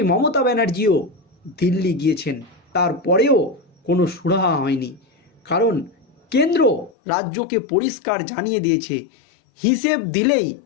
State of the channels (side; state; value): right; drops out; at 6.9 s